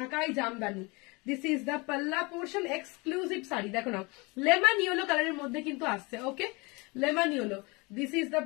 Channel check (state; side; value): quieter; right; 27.1 dB